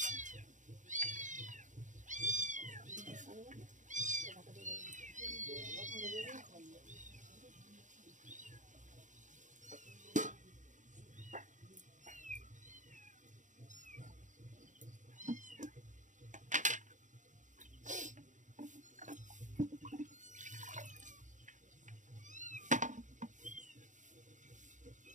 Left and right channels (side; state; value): left; late; 0.36 ms